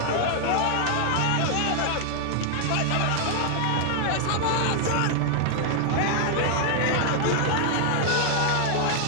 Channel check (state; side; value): different; both; correlation 0.00